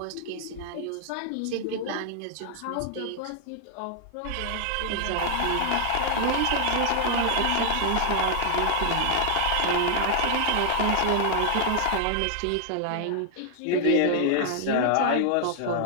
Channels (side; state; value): both; different; correlation 0.00